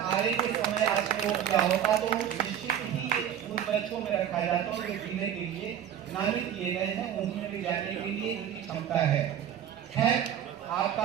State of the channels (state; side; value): quieter; left; 9.8 dB